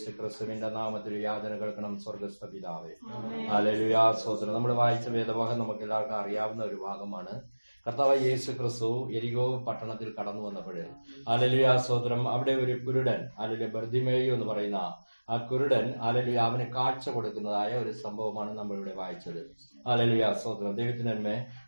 ക്രിസ്തുവിന്റെ നാമത്തിൽ യാചന കേൾക്കണം. സ്വർഗ്ഗസ്ഥ പിതാവേ. ഹല്ലേലൂയ. സ്തോത്രം. നമ്മൾ വായിച്ച വേദഭാഗം നമുക്ക് എല്ലാവർക്കും അറിയാവുന്ന ഒരു ഭാഗമാണ്. കർത്താവ് യേശു ക്രിസ്തു യെരിഹോ പട്ടണത്തിൽ കടന്നു വന്നപ്പോൾ ഹല്ലേലൂയ സ്തോത്രം, അവിടെ ഒരു കുരുടൻ ഹല്ലേലൂയ ബർത്തിമേയു എന്ന് പറയുന്ന ആ കുരുടൻ ഹല്ലേലൂയ അവന് കാഴ്ച കൊടുക്കുന്നതായ ഒരു സംഭവമാണ് നമ്മളിവിടെ വായിച്ചത്. ഹല്ലേലൂയ സ്തോത്രം. ദൈവത്തിന് നന്മ.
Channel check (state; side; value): inverted; both; correlation -1.00